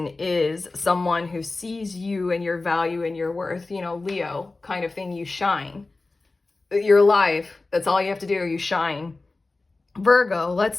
is someone who sees you and your value and your worth, Leo kind of thing. You shine. You're alive. That's all you have to do. You shine. Virgo, let's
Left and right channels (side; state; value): right; quieter; 3.4 dB